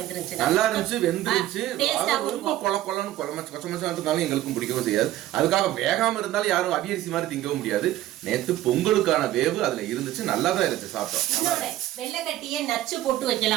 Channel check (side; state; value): left; quieter; 14.3 dB